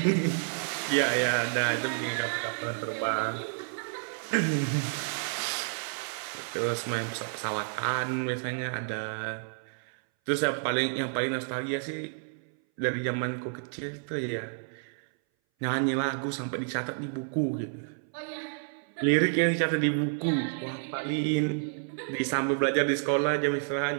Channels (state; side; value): silent; left; 58 dB below the other